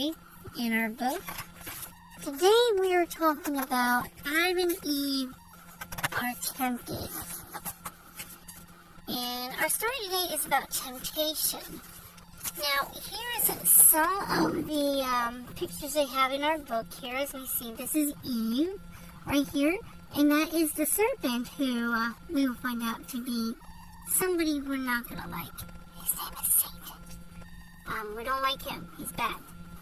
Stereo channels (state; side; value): identical; both; correlation 1.00